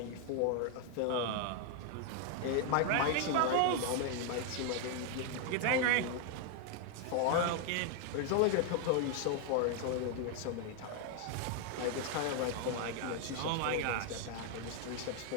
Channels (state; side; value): different; both; correlation 0.00